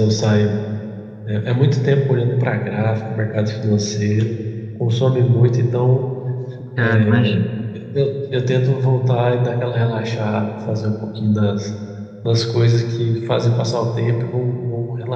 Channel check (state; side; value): identical; both; correlation 1.00